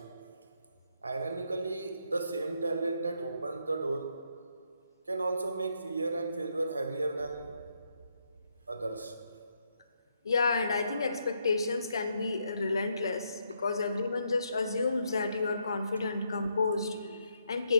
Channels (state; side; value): inverted; both; correlation -0.77